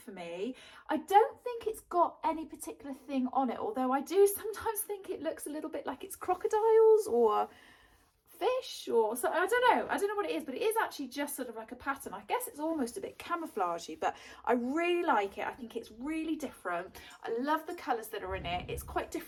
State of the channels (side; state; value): both; identical; correlation 1.00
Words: me. I don't think it's got any particular thing on it, although I do sometimes think it looks a little bit like it's crocodiles or fish or so. I don't know what it is, but it is actually just sort of like a pattern. I guess it's almost a bit camouflagey, but I really like it. I think it's really different. I love the colours that are in it. It's quite